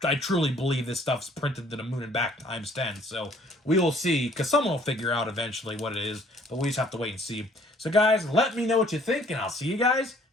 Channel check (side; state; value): both; normal; correlation 0.59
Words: truly believe this stuff's printed to the moon and back times 10. So we will see because someone will figure out eventually what it is, but we just have to wait and see. So guys, let me know what you think and I'll see you guys